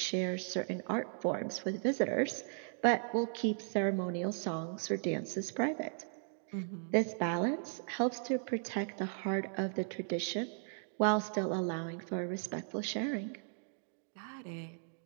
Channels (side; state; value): left; silent; digital silence